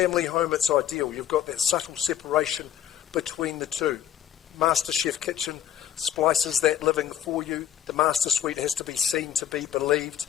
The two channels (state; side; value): quieter; right; 10.7 dB